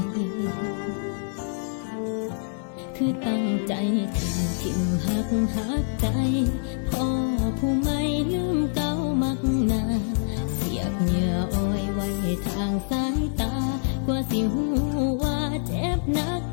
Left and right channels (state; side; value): silent; right; 61 dB below the other